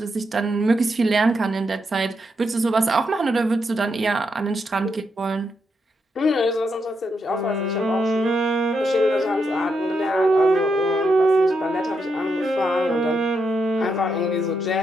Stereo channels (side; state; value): both; normal; correlation 0.81